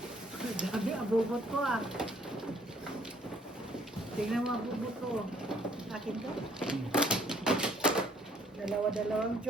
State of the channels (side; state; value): both; normal; correlation 0.63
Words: Dami, abubot ko ah. Tingnan mo abubot ko. Akin to. Dalawa-dalawang